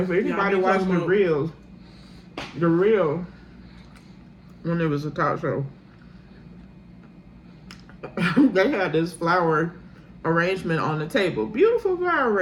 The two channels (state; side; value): identical; both; correlation 1.00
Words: anybody we watched talking about- the real, when it was a talk show, they had this flower arrangement on the table, beautiful flower